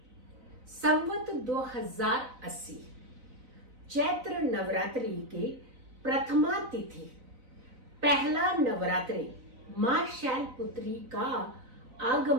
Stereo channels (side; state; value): left; late; 4.0 ms